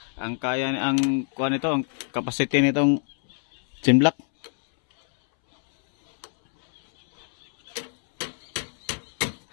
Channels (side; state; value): right; silent; 62 dB below the other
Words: ang kaya, ang kuha nito, ang capacity nitong timblak.